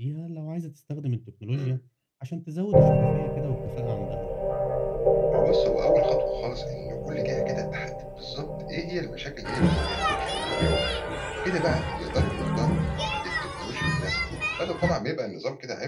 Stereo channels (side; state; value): both; identical; correlation 1.00